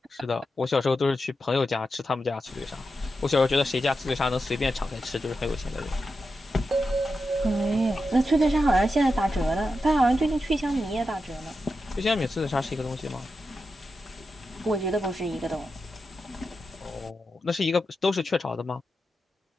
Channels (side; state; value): both; normal; correlation 0.89